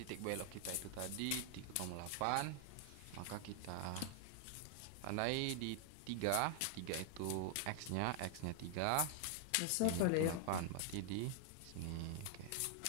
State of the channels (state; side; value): different; both; correlation 0.00